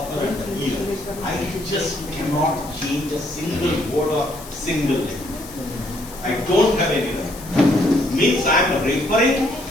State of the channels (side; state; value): left; noise; hiss, 16 dB below the sound